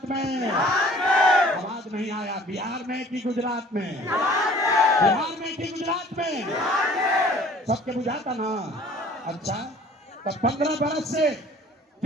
में? आवाज नहीं आया। बिहार में कि गुजरात में? बिहार में कि गुजरात में? सबके बुझाता ना। अच्छा, तो 15 बरस से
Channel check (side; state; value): both; normal; correlation 0.51